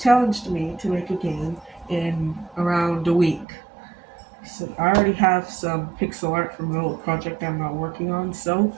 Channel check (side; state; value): left; drops out; at 3.5 s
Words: challenged me to make a game in around a week. So I already have some pixel art from an old project I'm not working on, so